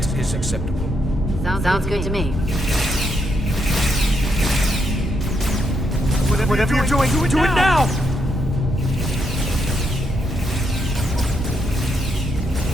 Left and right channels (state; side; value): normal; both; correlation 0.79